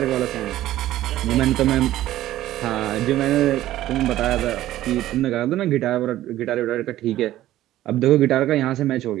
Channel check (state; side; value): quieter; left; 14.2 dB